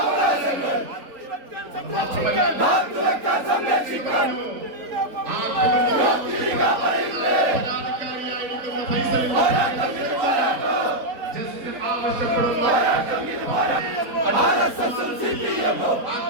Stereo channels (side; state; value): left; late; 3.9 ms